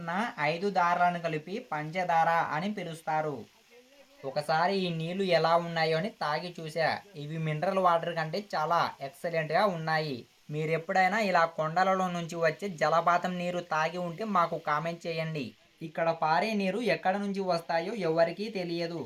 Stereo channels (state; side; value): identical; both; correlation 1.00